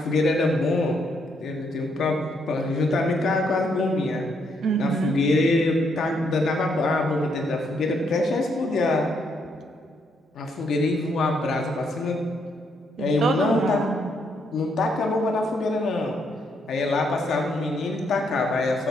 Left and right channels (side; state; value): both; normal; correlation 0.75